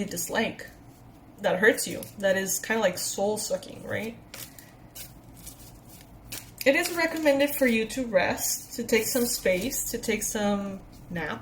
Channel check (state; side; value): identical; both; correlation 1.00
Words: dislike. that hurts you, that is kind of like soul-sucking, right? It is recommended for you to rest, to take some space, to take some